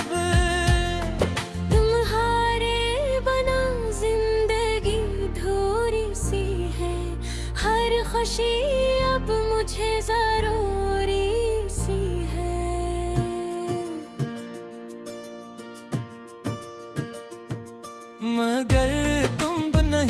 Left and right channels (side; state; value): both; identical; correlation 1.00